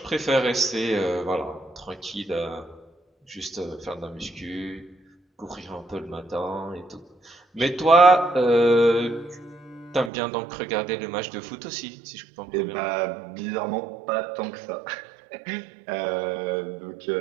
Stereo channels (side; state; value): left; drops out; at 10.1 s